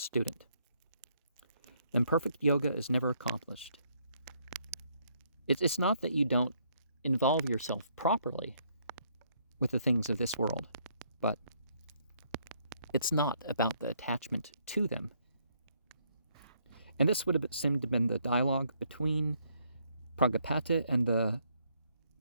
And perfect yoga is never accomplished. It's not that you don't involve yourself properly with the things of this world, but it's not about the attachment to them. And this would have seemed to have been the dialogue between Pragapati and the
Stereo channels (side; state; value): both; inverted; correlation -0.70